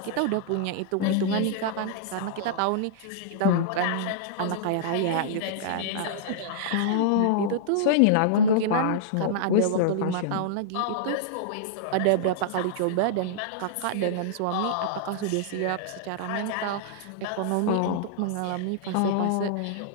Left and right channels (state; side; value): different; both; correlation -0.02